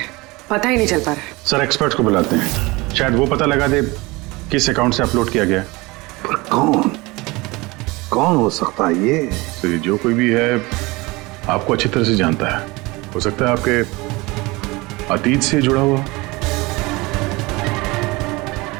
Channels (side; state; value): left; quieter; 23.2 dB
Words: पता ही नहीं चल पा रहा है। सर एक्सपर्ट्स को बुलाते हैं, शायद वो पता लगा दे किस अकाउंट से अपलोड किया गया। पर कौन हो सकता है ये? तो जो कोई भी है आपको अच्छी तरह से जानता है। हो सकता है आपके अतीत से जुड़ा हुआ।